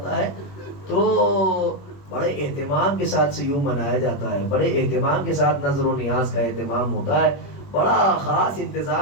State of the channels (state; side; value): late; right; 21 ms